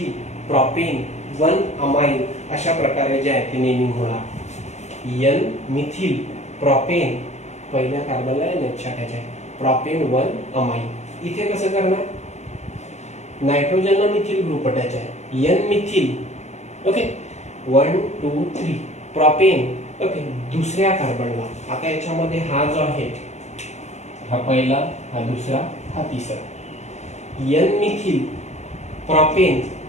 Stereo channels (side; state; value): right; late; 0.33 ms